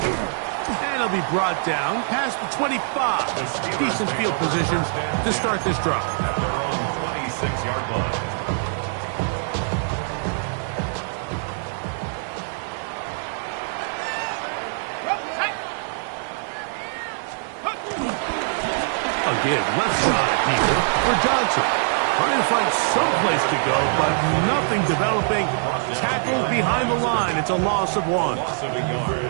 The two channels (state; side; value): silent; left; digital silence